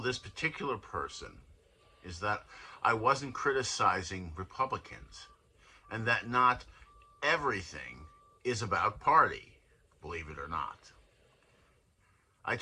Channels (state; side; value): identical; both; correlation 1.00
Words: this particular person is that I wasn't criticizing Republicans, and that not everything is about party, believe it or not. I